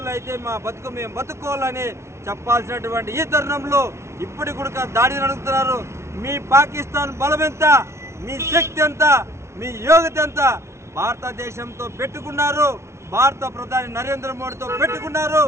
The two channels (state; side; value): late; left; 0.13 ms